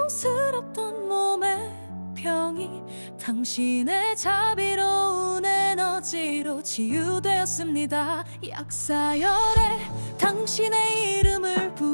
몸의 병이 당신의 자비로운 에너지로 치유되었습니다. 약사열에 당신의 이름을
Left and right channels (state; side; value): inverted; both; correlation -1.00